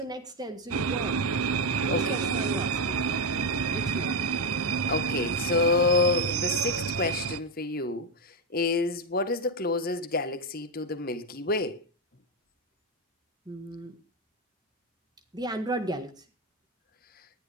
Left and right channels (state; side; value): normal; both; correlation 0.06